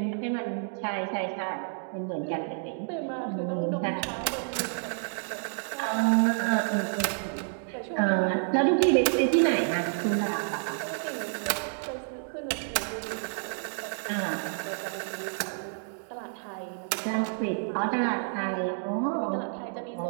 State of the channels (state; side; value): silent; left; digital silence